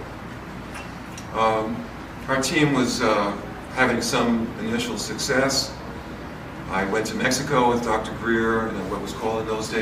our team was having some initial success. I went to Mexico with Dr. Greer and what was called in those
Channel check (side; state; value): both; identical; correlation 1.00